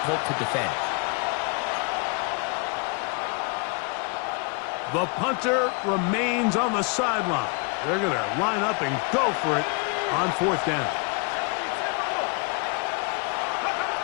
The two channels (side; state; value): right; quieter; 33.4 dB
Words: to defend. The punter remains on the sideline. They're going to line up and go for it on 4th down.